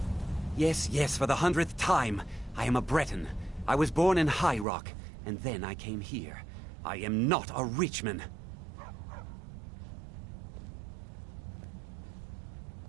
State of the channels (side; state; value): left; drops out; at 4.7 s